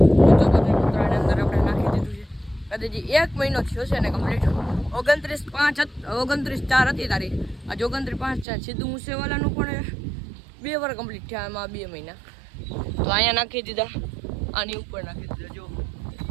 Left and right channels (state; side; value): drops out; left; at 8.5 s